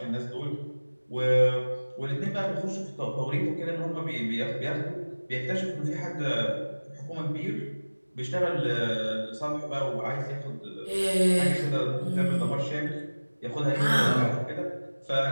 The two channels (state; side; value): inverted; both; correlation -1.00